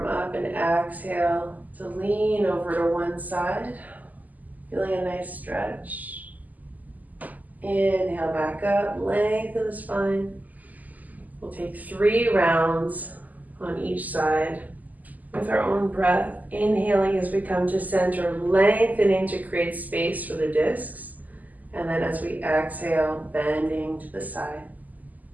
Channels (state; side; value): late; left; 0.080 ms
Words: up and exhale to lean over to one side. Feeling a nice stretch. Inhale back up, lengthen the spine. We'll take 3 rounds on each side with our own breath. Inhaling as we come to center, lengthening to create space for the discs. And then as we exhale, bending to the side.